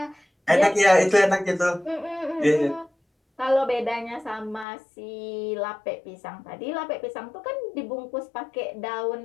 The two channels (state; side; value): drops out; right; at 4.7 s